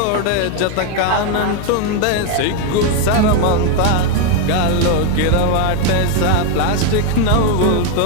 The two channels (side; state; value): both; different; correlation 0.01